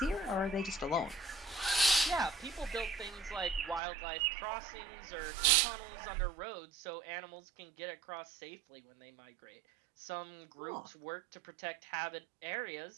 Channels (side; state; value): left; drops out; at 3.8 s